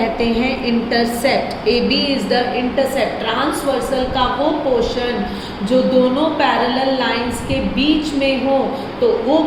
हैं intercept. AB is the intercept. Transversal का वो पोर्शन जो दोनों पैरेलल लाइंस के बीच में हो तो वो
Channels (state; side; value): identical; both; correlation 1.00